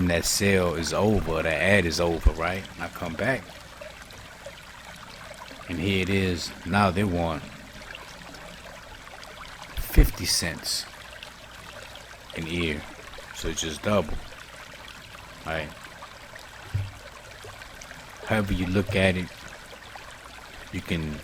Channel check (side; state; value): both; identical; correlation 1.00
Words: that sale is over, that ad is over, right? And I come back, and here it is. Now they want 50 cents an ear, so it's just double, right? However you look at it, you can